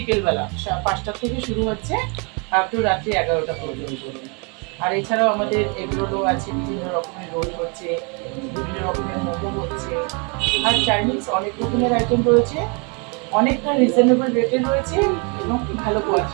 5টা থেকে শুরু হচ্ছে আপ টু রাত্রি 11টা পর্যন্ত। আর এছাড়াও আমাদের এগ রোলও আছে, বিভিন্ন রকমের রোল হচ্ছে, বিভিন্ন রকমের মোমো হচ্ছে। আর চাইনিজ অনেক রকমের আইটেম রয়েছে, অনেকটা রিজনেবল রেটে রয়েছে এবং ভালো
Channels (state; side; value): quieter; left; 33.7 dB